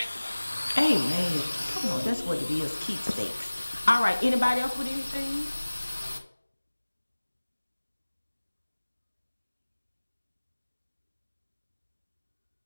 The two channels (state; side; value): inverted; both; correlation -1.00